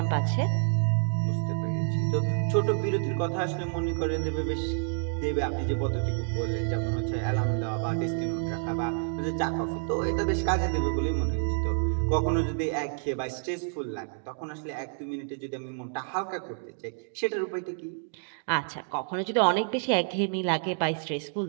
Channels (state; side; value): silent; left; 59 dB below the other